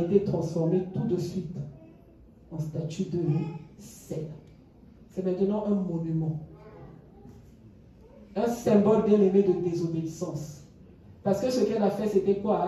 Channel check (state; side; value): identical; both; correlation 1.00